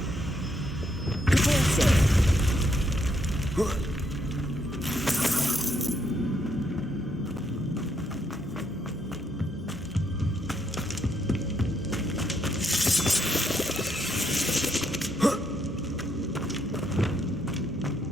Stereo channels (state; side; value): normal; both; correlation 0.75